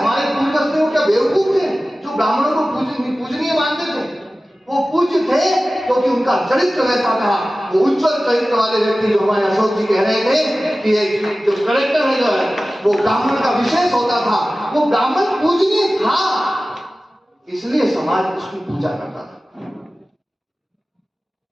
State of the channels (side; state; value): both; normal; correlation 0.96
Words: पूर्वज थे वो क्या बेवकूफ थे जो ब्राह्मणों को पूजनीय मानते थे? वो पूज्य थे क्योंकि उनका चरित्र वैसा था। वो उज्जवल चरित्र वाले व्यक्ति जो हमारे अशोक जी कह रहे थे कि जो करेक्टर है जो है वो ब्राह्मण का विशेष होता था, वो ब्राह्मण पूजनीय था, इसलिए समाज उसकी पूजा करता था।